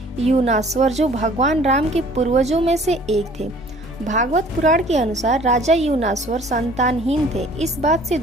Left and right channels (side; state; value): both; normal; correlation 0.53